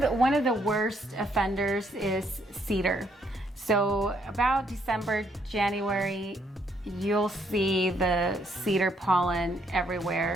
One of the worst offenders is cedar. So about December, January, you'll see the cedar pollen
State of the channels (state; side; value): normal; both; correlation 0.71